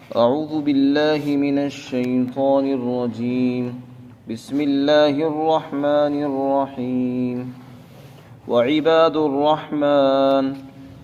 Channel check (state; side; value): identical; both; correlation 1.00